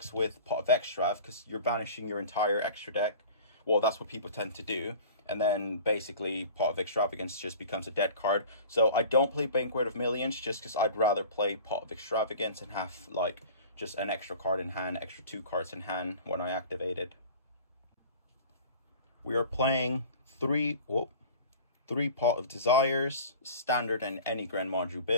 with Pot of Extrav, because you're banishing your entire extra deck. Well, that's what people tend to do. And then basically Pot of Extravagance just becomes a dead card. So I don't play Banquet of Millions just because I'd rather play Pot of Extravagance and have like just an extra card in hand, extra 2 cards in hand when I activate it. We are playing 3 Pot of Desires, standard in any GREN MAJU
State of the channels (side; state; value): both; inverted; correlation -0.41